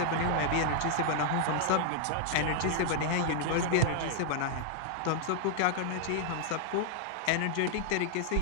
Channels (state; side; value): different; both; correlation -0.01